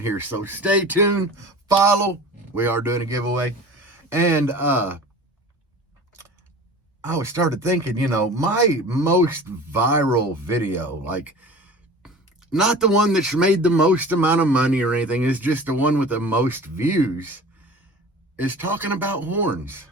here, so stay tuned, follow. We are doing a giveaway. And I started thinking, my most viral video, like not the one that's made the most amount of money or anything, is just the one with the most views, is talking about horns.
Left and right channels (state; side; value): normal; both; correlation 0.39